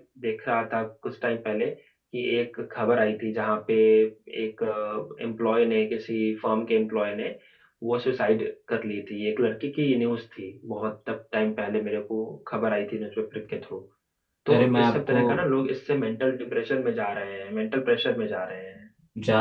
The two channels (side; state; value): both; identical; correlation 1.00